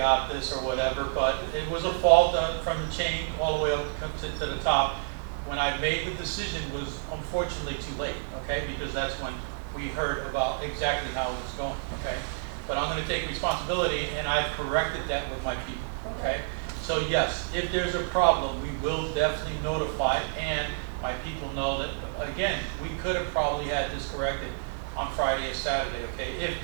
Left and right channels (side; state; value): left; silent; 56 dB below the other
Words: this or whatever, but it was a fault from the chain all the way up to the top. When I made the decision was unfortunately too late, okay? Because that's when we heard about exactly how it was going, okay? But I'm gonna take responsibility and I've corrected that with my people, okay? So yes, if there's a problem, we will definitely notify, and my people know that, again, we could have probably had this corrected on Friday or Saturday, okay, if